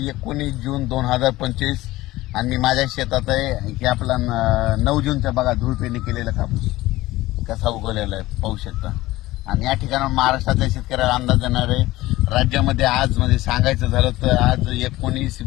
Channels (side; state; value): right; quieter; 17.8 dB